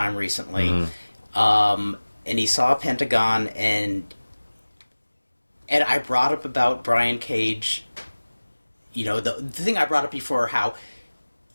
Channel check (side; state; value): both; inverted; correlation -1.00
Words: recently, and he saw Pentagon And I brought up about Brian Cage, you know, the thing I brought up before, how